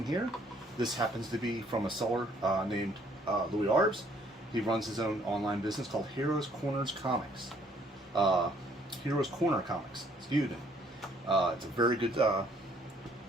here. This happens to be from a seller named Louie Arbs. He runs his own online business called Heroes Corners Comics. Heroes Corner Comics, excuse me. It's a very good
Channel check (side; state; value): both; normal; correlation 0.63